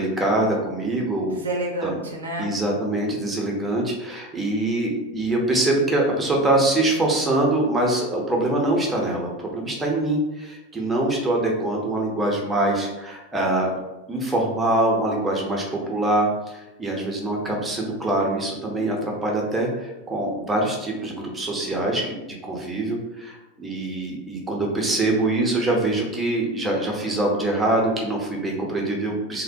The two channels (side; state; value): both; normal; correlation 0.32